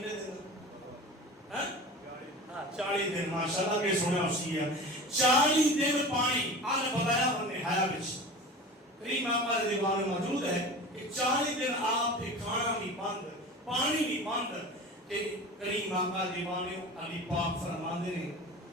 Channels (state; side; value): normal; both; correlation 0.35